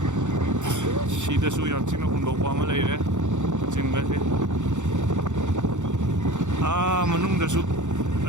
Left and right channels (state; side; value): late; left; 0.85 ms